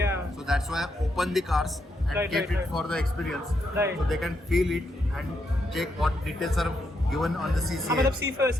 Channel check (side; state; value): both; normal; correlation 0.80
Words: So that's why I opened the cars and Right, kept right. it for the experience. Right. So they can feel it and check what details are given on the CCA. मतलब see for